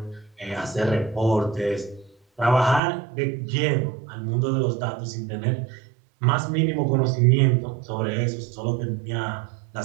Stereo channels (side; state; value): left; drops out; at 2.8 s